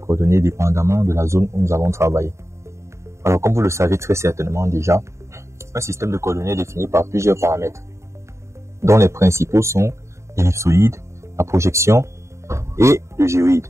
dépendamment de la zone où nous allons travailler. Alors, comme vous le savez très certainement déjà, un système de coordonnées est défini par plusieurs paramètres, dont les principaux sont l'ellipsoïde, la projection et le géoïde.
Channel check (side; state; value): left; late; 0.14 ms